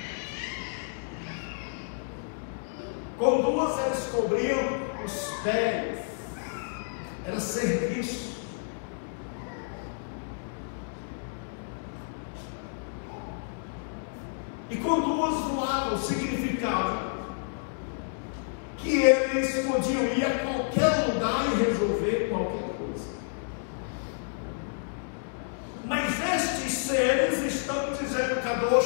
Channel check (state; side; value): silent; right; digital silence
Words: Com 2 eles cobriam os pés, era serviço. E com 2 voavam, significava que eles podiam ir a qualquer lugar e resolver qualquer coisa. Mas estes seres estão dizendo: